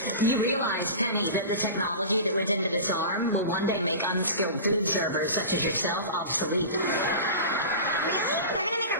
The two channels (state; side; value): inverted; both; correlation -0.32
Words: You realize, Penny, that the technology that went into this arm will one day make unskilled food servers such as yourself obsolete. Really? They're gonna make a